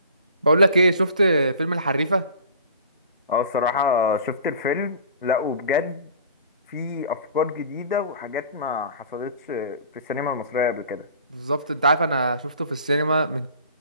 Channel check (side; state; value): both; inverted; correlation -0.44